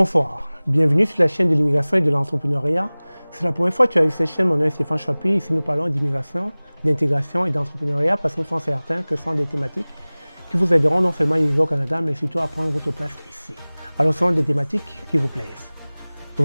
Bienvenue sur la chaîne de l'immigration et de l'entrepreneuriat. C'est la première fois que tu as vu cette chaîne. Mon nom est Stéphane Chapuis. Ici, nous parlons d'immigration, d'intégration et d'entrepreneuriat parce que nous sommes certains que ce sont des thématiques qui vous aideront non seulement à immigrer au Canada, mais surtout à prendre votre place ici. Alors, ce sont des thématiques qui vous plaisent. Je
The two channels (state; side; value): inverted; both; correlation -1.00